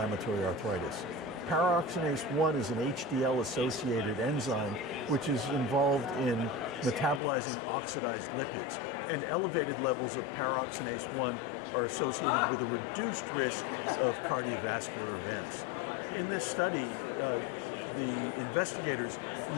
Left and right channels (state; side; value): drops out; right; at 7.2 s